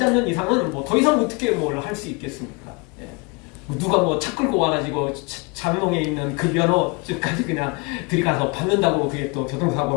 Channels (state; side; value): quieter; right; 29.3 dB